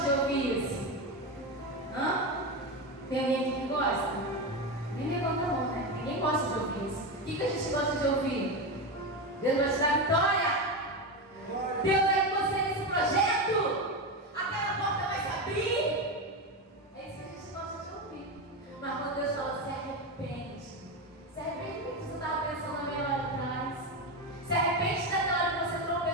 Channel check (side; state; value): both; normal; correlation 0.16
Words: de ouvir isso? Hã? Tem alguém aqui que gosta? Nem levanta a mão, né? Ninguém gosta de ouvir isso. O que a gente gosta de ouvir? Deus vai te dar vitória. Deus vai com você nesse projeto. Aquela porta vai se abrir. É isso que a gente gosta de ouvir. Mas quando Deus fala: se arrepende. Se arrepende do que você estava pensando na meia hora atrás. Se arrepende daquela hora que você